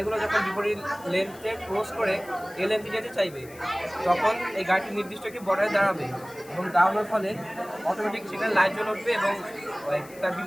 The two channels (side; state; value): left; noise; hiss, 21 dB below the sound